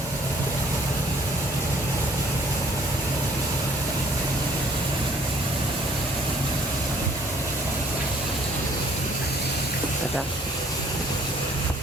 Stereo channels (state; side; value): normal; both; correlation 0.58